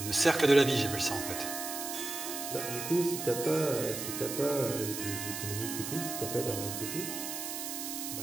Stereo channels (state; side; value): noise; right; hiss, 5 dB below the sound